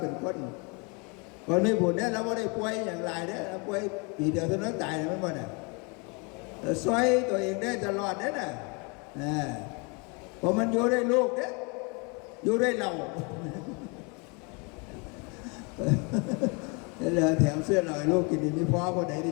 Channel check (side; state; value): right; quieter; 32.1 dB